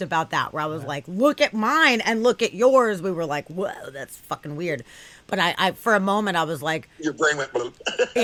about that, where I was like, look at mine and look at yours. We were like, whoa, that's fucking weird. But I for a moment, I was like, Your brain went bloop.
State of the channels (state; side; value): identical; both; correlation 1.00